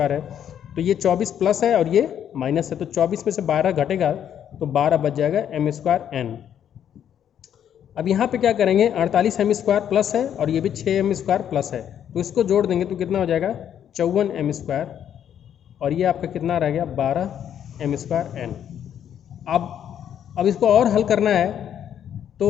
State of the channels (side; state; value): right; quieter; 9.5 dB